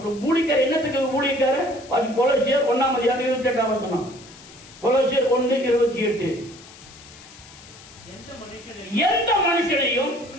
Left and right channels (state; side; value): noise; left; hiss, 20 dB below the sound